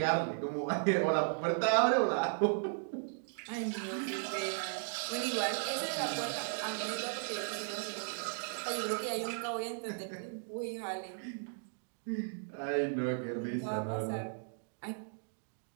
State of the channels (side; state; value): left; silent; digital silence